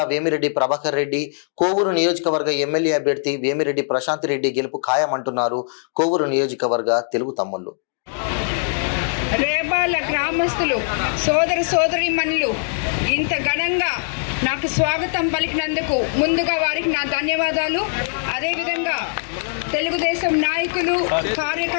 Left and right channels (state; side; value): silent; right; digital silence